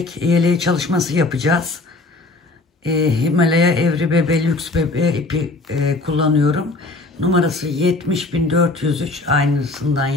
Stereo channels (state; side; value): quieter; right; 3.2 dB